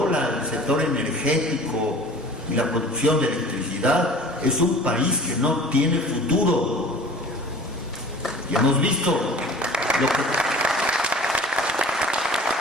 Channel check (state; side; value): normal; both; correlation 0.44